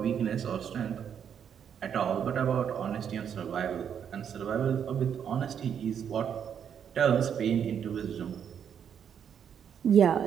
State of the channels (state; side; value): quieter; left; 8.2 dB